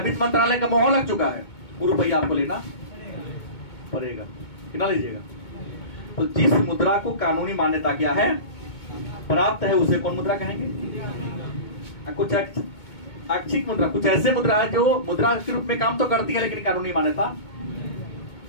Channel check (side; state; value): right; late; 2.2 ms